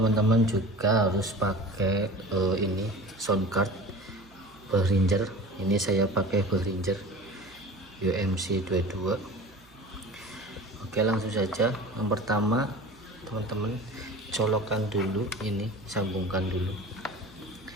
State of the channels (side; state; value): right; noise; hum, 27 dB below the sound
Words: juga harus pakai ini sound card Behringer. Ini saya pakai Behringer UMC 22. Oke, langsung saja. Yang pertama, teman-teman colokkan dulu ini, sambungkan dulu